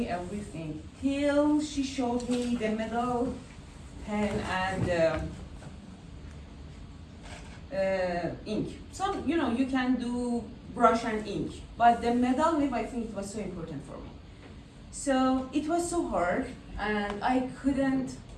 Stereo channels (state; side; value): identical; both; correlation 1.00